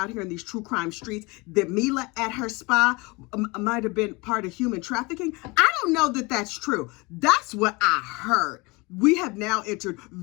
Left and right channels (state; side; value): quieter; right; 25.6 dB